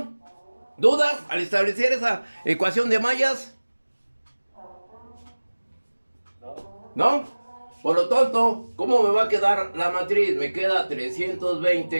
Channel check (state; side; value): inverted; both; correlation -1.00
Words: ¿Dudas al establecer esa ecuación de mallas? ¿No? Por lo tanto, ¿cómo me va a quedar la matriz? Me queda